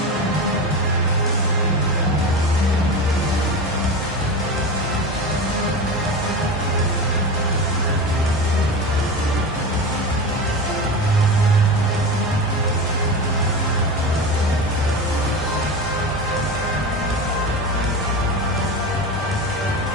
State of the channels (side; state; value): both; normal; correlation 0.25